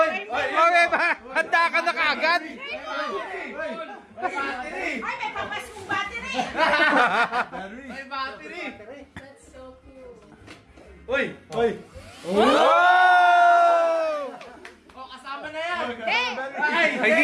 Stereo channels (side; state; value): both; identical; correlation 1.00